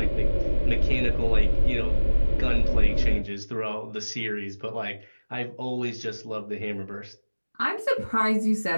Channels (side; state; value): both; inverted; correlation -1.00